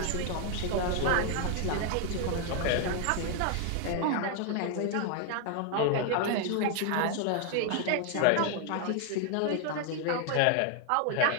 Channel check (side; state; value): both; different; correlation 0.00